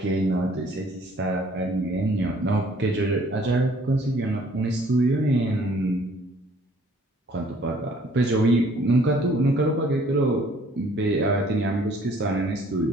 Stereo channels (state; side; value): normal; both; correlation 0.58